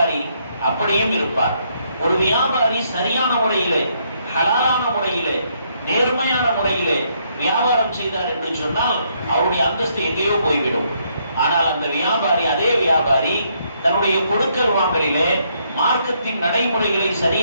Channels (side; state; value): both; inverted; correlation -0.73